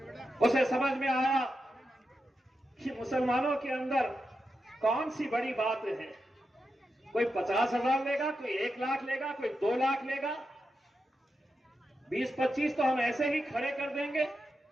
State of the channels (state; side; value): normal; both; correlation 0.88